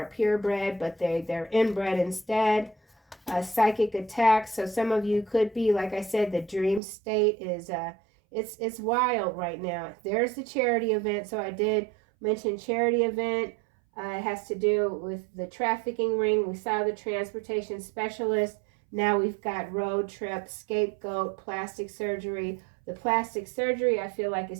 purebred, but they're inbred instead. Psychic attacks. So some of you could be, like I said, the dream state is it's wild right now. There's the charity event. So I did mention charity event. It has to do with the trafficking ring. We saw the transportation specialist. Now we've got road trip, scapegoat, plastic surgery. The plastic surgery, I feel like,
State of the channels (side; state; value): left; drops out; at 6.8 s